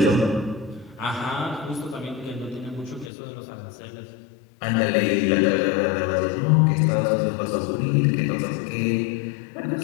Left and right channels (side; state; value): right; drops out; at 3.1 s